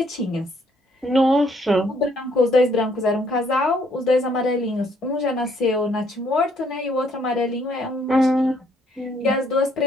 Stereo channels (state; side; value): normal; both; correlation 0.67